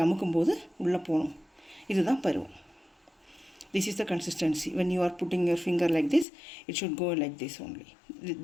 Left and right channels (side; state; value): right; drops out; at 6.2 s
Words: அமுக்கும்போது உள்ளே போகணும். இதுதான் பருவம். This is the consistency. When you are putting your finger like this, it should go like this only.